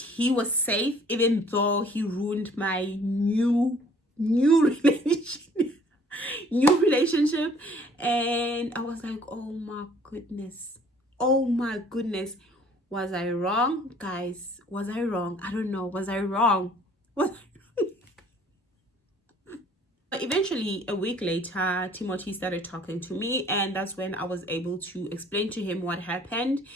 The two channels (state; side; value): normal; both; correlation 0.56